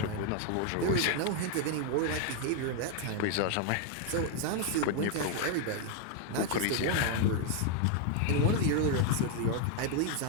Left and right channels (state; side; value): different; both; correlation 0.01